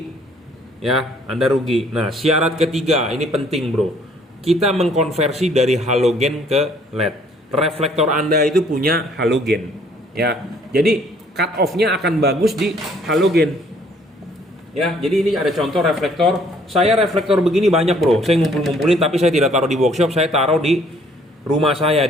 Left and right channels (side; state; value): both; normal; correlation 0.61